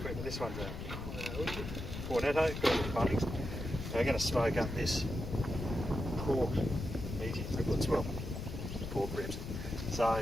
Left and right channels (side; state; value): left; noise; rumble, 6 dB below the sound